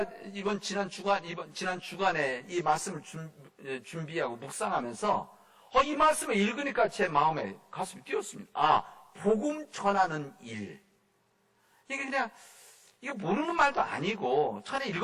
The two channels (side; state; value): both; identical; correlation 1.00